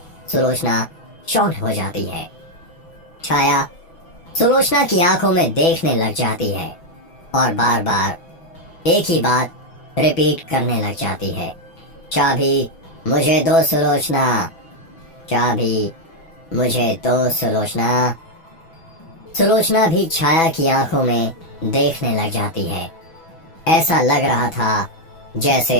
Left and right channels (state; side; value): late; right; 6.1 ms